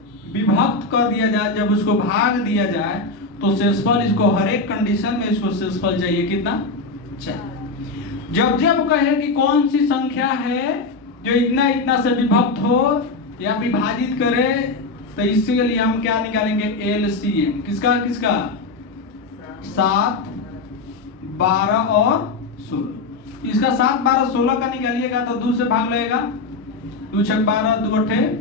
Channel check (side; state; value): right; quieter; 3.7 dB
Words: विभक्त कर दिया जाए। जब उसको भाग दिया जाए तो शेषफल, इसको हर एक कंडीशन में इसको शेषफल चाहिए कितना, 4। जब जब कहे कि कौन सी संख्या है जो इतना इतना से विभक्त हो या विभाजित करे, तो इसके लिए हम क्या निकालेंगे, एलसीएम। किसका किसका, 7, 12 और 16। इसका 7, 12, 16 का निकालिएगा तो 2 से भाग लगेगा, 2 6 12, 2 8